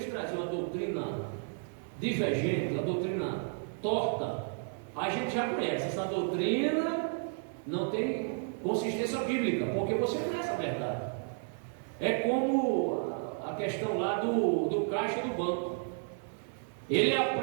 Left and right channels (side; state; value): left; silent; 56 dB below the other